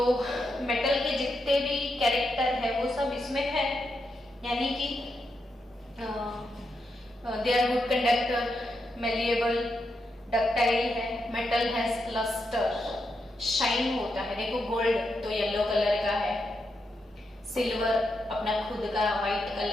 मेटल के जितने भी कैरेक्टर है वो सब इसमें है, यानी कि they are good conductor, malleable, ductile है, मेटल हैज लस्टर, शाइन होता है। देखो गोल्ड तो येलो कलर का है, सिल्वर अपना खुद का व्हाइट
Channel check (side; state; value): both; normal; correlation 0.84